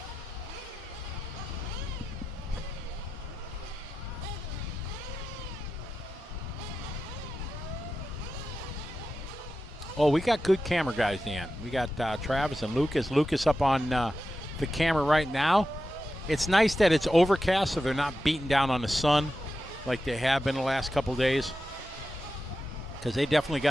Oh, we got good camera guys, Dan. We got Travis and Lucas. Lucas up on the camera right now. It's nice that it's overcast, so they're not beating down on the sun like they have been the last couple days, because they definitely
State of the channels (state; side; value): normal; both; correlation 0.91